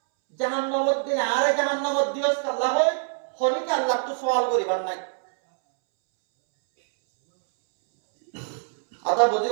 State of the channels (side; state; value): left; silent; 62 dB below the other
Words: জাহান্নামত দিলে আরে জাহান্নামত দিওস আল্লাহ হয় অনেকে আল্লাহ তো সওয়াল করিবার নাই কথা